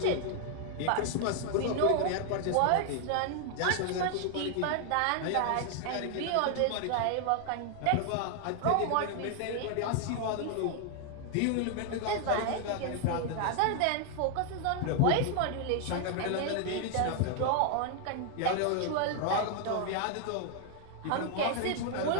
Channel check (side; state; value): both; different; correlation 0.00